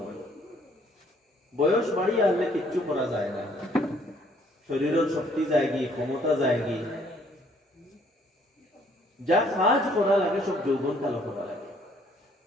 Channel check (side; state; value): both; normal; correlation 0.63